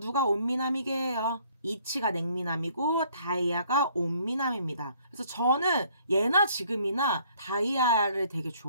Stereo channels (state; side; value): inverted; both; correlation -0.62